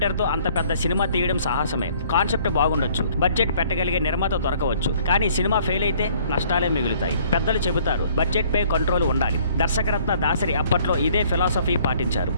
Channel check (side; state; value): both; inverted; correlation -0.58